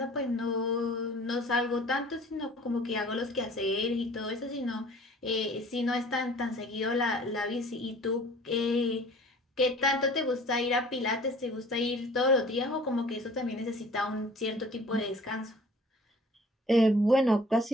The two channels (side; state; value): both; normal; correlation 0.49